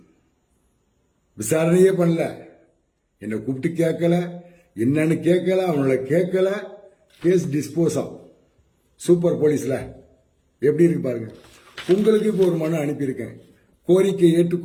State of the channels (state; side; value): identical; both; correlation 1.00